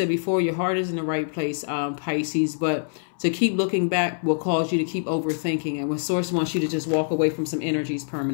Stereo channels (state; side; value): silent; right; 62 dB below the other